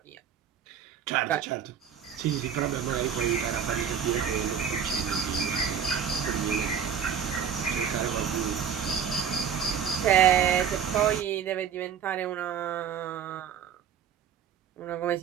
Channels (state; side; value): quieter; left; 8.0 dB